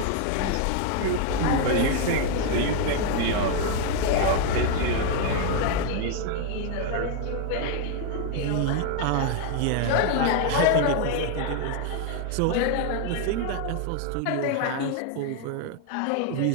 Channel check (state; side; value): different; both; correlation 0.01